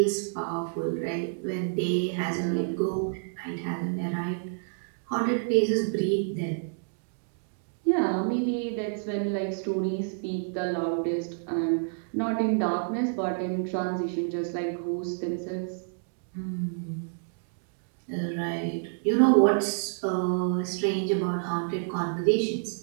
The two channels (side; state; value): left; silent; digital silence